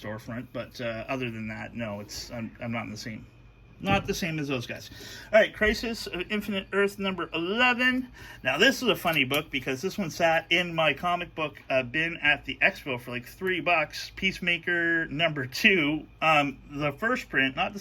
but other than that, no, I'm not not the same as those guys. All right, Crisis of Infinite Earth number 11. Now this is a funny book because this one sat in my comic book bin at the expo for like $3. Peacemaker number 2, the first print, not the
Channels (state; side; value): identical; both; correlation 1.00